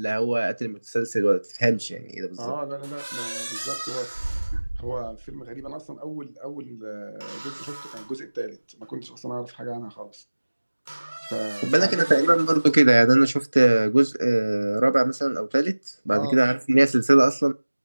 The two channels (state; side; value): inverted; both; correlation -1.00